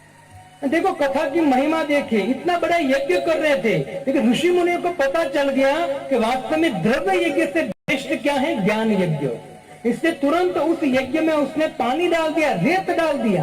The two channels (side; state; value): both; identical; correlation 1.00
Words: देखो कथा की महिमा देखिए, इतना बड़ा यज्ञ कर रहे थे, लेकिन ऋषि मुनियों को पता चल गया कि वास्तव में द्रव्य यज्ञ से श्रेष्ठ क्या है, ज्ञान यज्ञ। इससे तुरंत उस यज्ञ में उसने पानी डाल दिया, रेत डाल